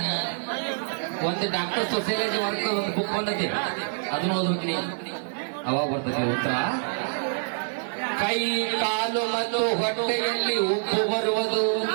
ಒಂದು ಡಾಕ್ಟರ್ ಸೊಸೈಟಿ ವರ್ಕ್ ಒಂದು ಬುಕ್ ಕೊಂಡೈತಿ, ಅದನ್ನ ಓದ್ಬಿಡ್ತೀನಿ, ಅವಾಗ ಬರ್ತದೆ ಉತ್ತರ. ಕೈ ಕಾಲು ಮತ್ತು ಹೊಟ್ಟೆಯಲ್ಲಿ ಉಪ್ಪು ಬರುವುದು.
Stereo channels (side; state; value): left; silent; digital silence